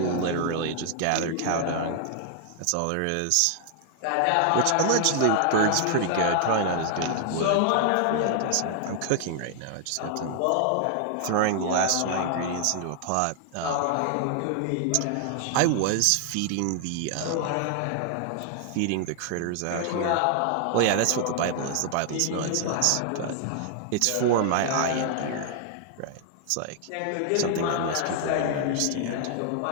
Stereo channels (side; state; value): both; different; correlation 0.00